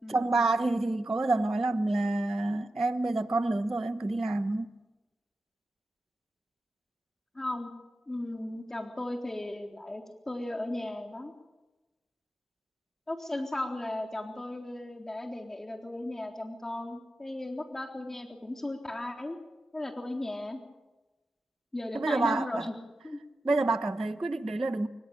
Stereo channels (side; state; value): both; normal; correlation 0.91